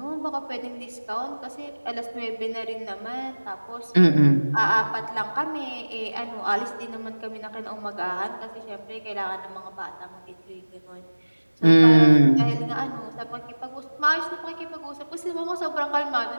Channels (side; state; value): both; inverted; correlation -1.00